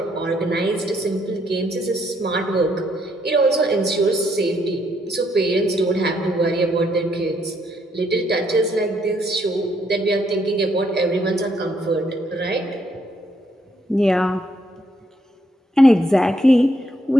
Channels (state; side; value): normal; both; correlation 0.73